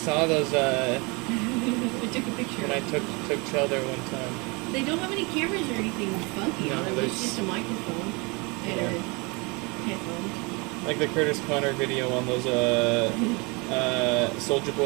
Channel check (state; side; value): quieter; left; 28.4 dB